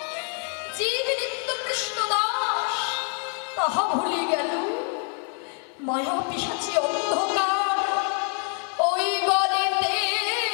জীব নিত্য কৃষ্ণ দাস তাহা ভুলে গেল। মায়া পিশাচী অন্ধকার ওই গলেতে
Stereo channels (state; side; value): quieter; right; 38.1 dB